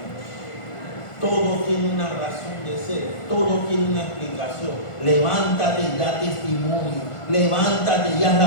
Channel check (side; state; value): right; late; 1.5 ms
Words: Todo tiene una razón de ser, todo tiene una explicación. Levántate y da testimonio. Levántate y haz